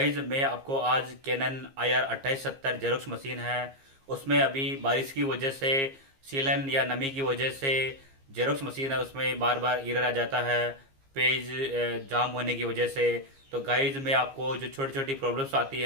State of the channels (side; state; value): left; late; 15 ms